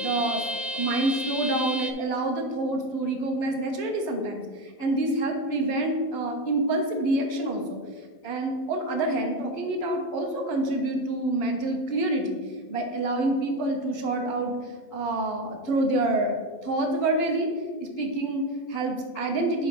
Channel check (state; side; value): late; right; 12 ms